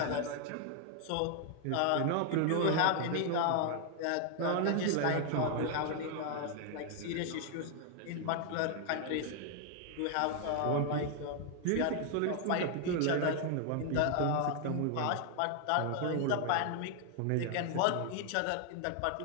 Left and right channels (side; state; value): both; different; correlation 0.00